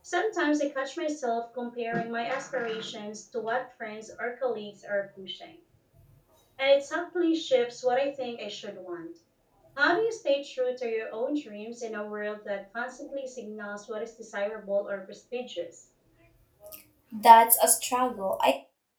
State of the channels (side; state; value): both; identical; correlation 1.00